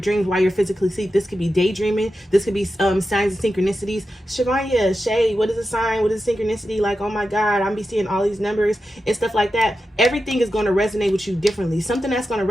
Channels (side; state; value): both; normal; correlation 0.90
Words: while you're physically asleep. This could be daydreaming. This could be signs and synchronicities. Shavanya, Shay, what is a sign? What is a synchronicity? Like, oh my God, I'm be seeing all these numbers and stuff like that. Everything is going to resonate with you differently. Something that's going